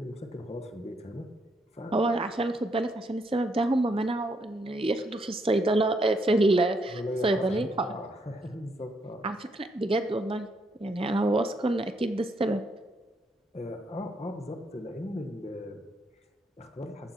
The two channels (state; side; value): normal; both; correlation 0.75